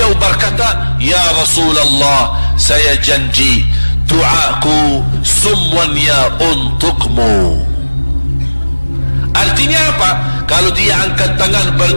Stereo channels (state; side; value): inverted; both; correlation -1.00